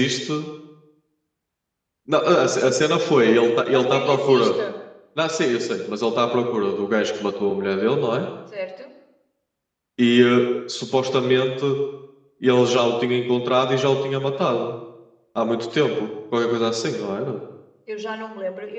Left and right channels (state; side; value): identical; both; correlation 1.00